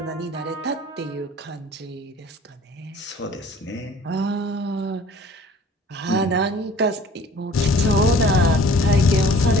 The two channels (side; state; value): both; normal; correlation 0.51